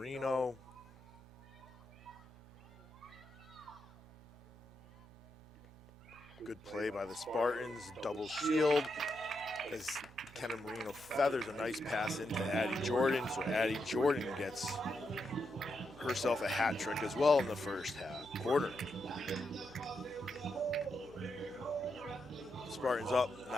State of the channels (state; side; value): normal; both; correlation 0.84